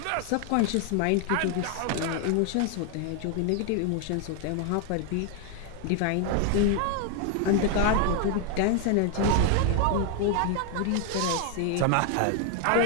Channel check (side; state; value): both; different; correlation 0.01